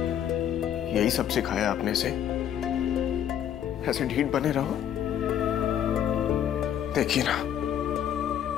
यही सब सिखाया आपने से? ऐसे ढीठ बने रहो? देखिए ना,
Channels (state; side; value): quieter; right; 10.0 dB